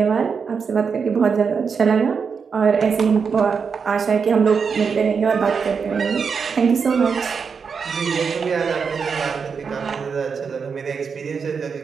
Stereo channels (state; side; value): quieter; left; 5.9 dB